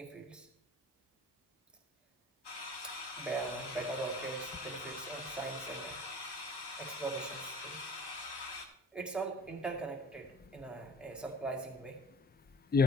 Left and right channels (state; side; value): normal; both; correlation 0.43